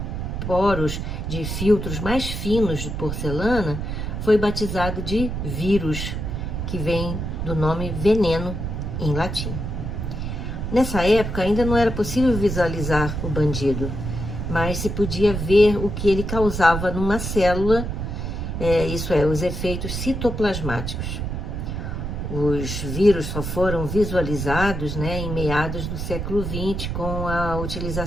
poros de filtros mais finos de porcelana, foi batizado de vírus, que vem do nome veneno em latim. Nessa época ainda não era possível visualizar o bandido, mas se podia ver o que ele causava numa célula, isso é, os efeitos citoplasmáticos. Os vírus só foram visualizados, né, em meados do século XX com a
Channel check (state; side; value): noise; right; rumble, 4 dB below the sound